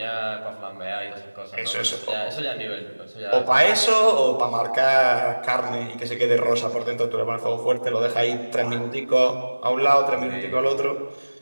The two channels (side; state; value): both; inverted; correlation -1.00